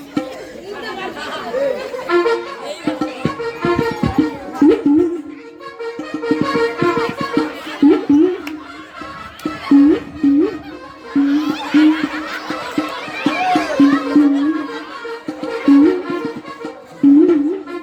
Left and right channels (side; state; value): both; identical; correlation 1.00